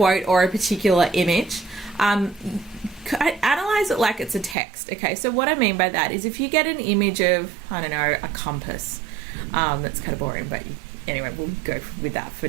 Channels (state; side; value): drops out; left; at 4.5 s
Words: or a particular image, analyze it like it's a text. Okay, so what I mean by that is if you get an image of, I don't know, a compass, that's kind of boring, but anyway, we'll go with that for